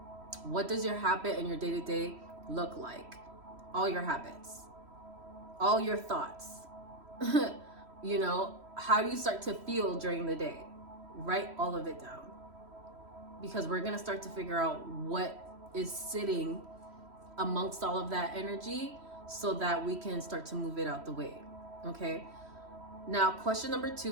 What does your habit and your day-to-day look like? All your habits, all your thoughts. You know, how do you start to feel during the day? Write all of it down, because we're going to start to figure out what is sitting amongst all of that energy so that we can start to move it out the way. Okay. Now, question number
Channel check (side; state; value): left; late; 3.1 ms